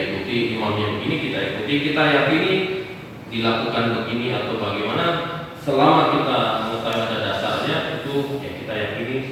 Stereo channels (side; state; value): both; identical; correlation 1.00